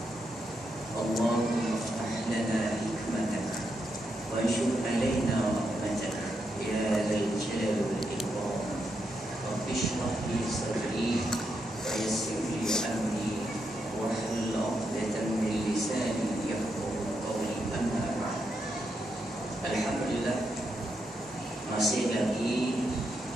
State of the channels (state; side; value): normal; both; correlation 0.82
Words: اللهم افتح لنا حكمتك وانشر علينا رحمتك يا ذا الجلال والإكرام. رب اشرح لي صدري ويسر لي أمري واحلل عقدة من لساني يفقهوا قولي. أما بعد. Alhamdulillah, masih lagi